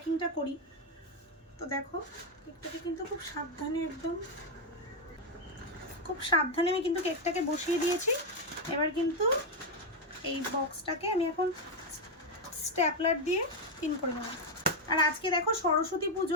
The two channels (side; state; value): both; normal; correlation 0.04